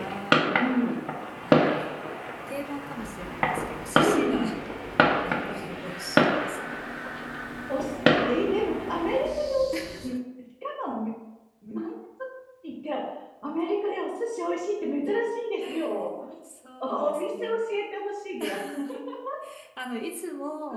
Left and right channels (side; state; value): both; identical; correlation 1.00